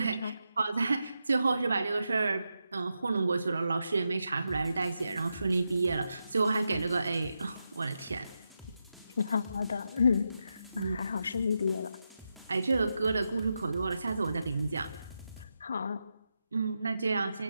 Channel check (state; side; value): inverted; both; correlation -0.87